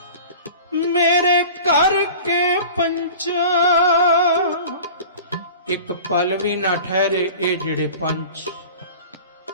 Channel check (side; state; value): both; inverted; correlation -0.39